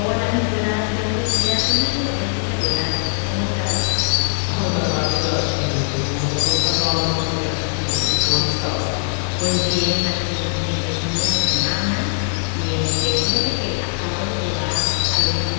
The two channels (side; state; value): right; silent; digital silence